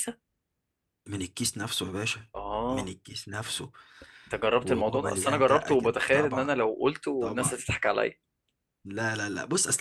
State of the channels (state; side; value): identical; both; correlation 1.00